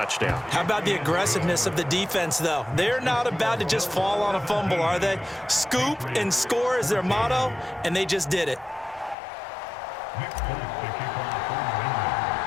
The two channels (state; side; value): drops out; right; at 9.2 s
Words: How about the aggressiveness of the defense, though? They're not about to just fall on a fumble, are they? Scoop and score is their motto, and they just did it.